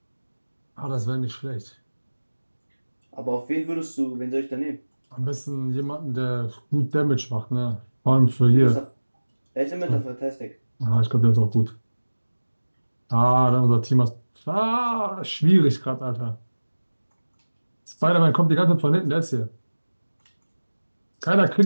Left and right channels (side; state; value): both; inverted; correlation -1.00